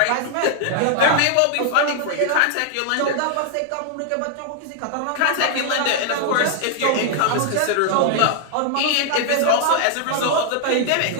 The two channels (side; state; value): both; different; correlation 0.00